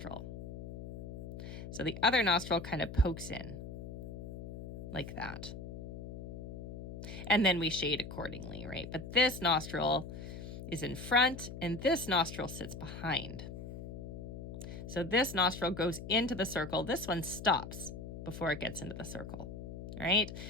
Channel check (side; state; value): left; noise; hum, 9 dB below the sound